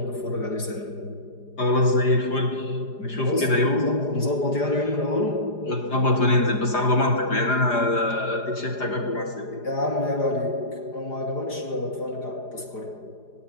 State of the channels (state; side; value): late; right; 4.9 ms